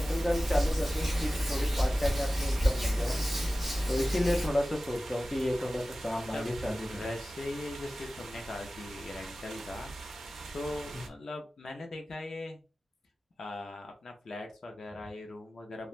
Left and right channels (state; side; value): normal; both; correlation 0.96